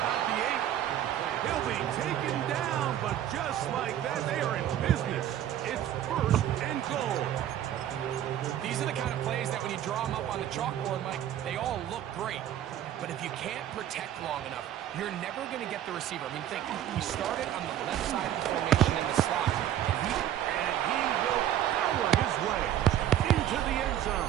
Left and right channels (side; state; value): left; quieter; 11.5 dB